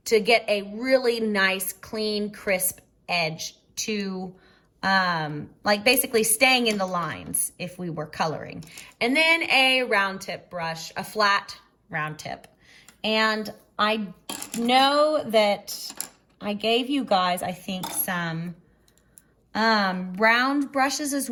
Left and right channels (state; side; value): identical; both; correlation 1.00